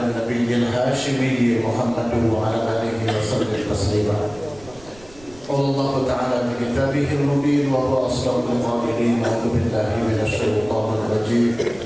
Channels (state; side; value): noise; right; rumble, 23 dB below the sound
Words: النبي الهاشمي محمد وعلى آله وسلم تسليما. قال الله تعالى في كتابه المبين وهو أصدق القائلين: أعوذ بالله من الشيطان الرجيم.